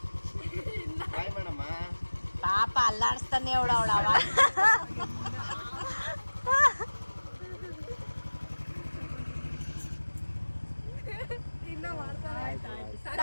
ಬಾಯ್ ಮಾಡಮ್ಮ. ಪಾಪ ಅಲ್ಲಾಡಿಸ್ತಾನೆ ಅವಳ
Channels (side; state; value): both; inverted; correlation -1.00